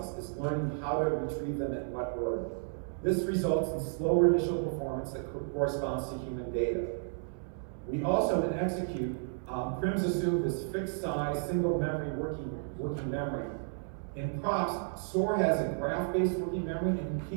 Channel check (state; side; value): silent; left; 56 dB below the other